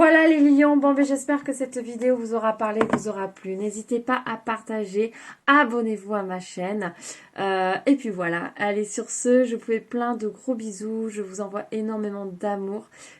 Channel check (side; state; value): both; identical; correlation 1.00